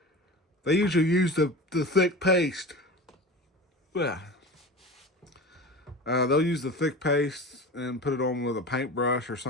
they usually use the thick paste. Yeah. They'll use the thick paste and put it on with a paintbrush or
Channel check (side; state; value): both; normal; correlation 0.32